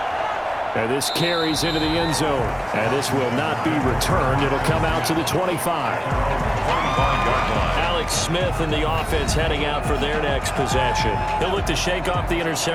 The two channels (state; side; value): identical; both; correlation 1.00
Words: And this carries into the end zone. And this will not be returned. It'll come out to the 25. 25-yard line. Alex Smith and the offense heading out for their next possession. He'll look to shake off the